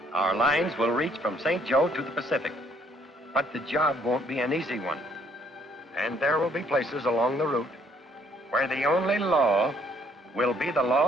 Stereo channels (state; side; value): normal; both; correlation 0.65